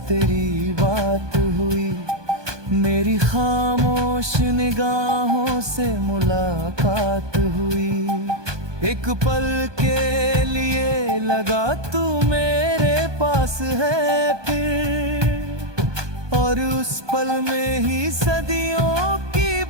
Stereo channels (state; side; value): late; left; 1.2 ms